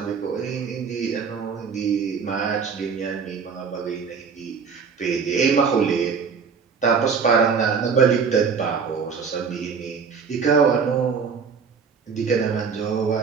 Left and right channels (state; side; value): quieter; left; 5.9 dB